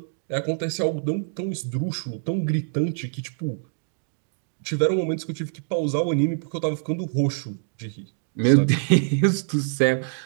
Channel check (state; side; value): silent; left; digital silence